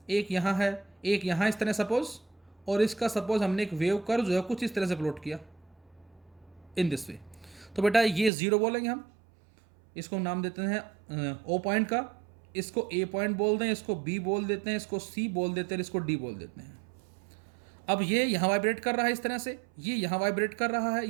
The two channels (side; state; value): left; drops out; at 8.3 s